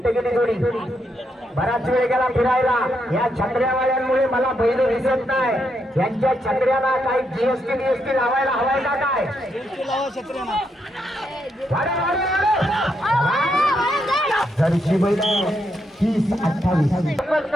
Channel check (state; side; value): normal; both; correlation 0.79